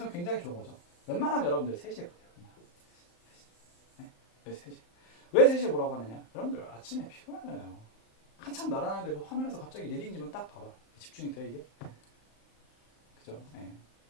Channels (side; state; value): right; late; 35 ms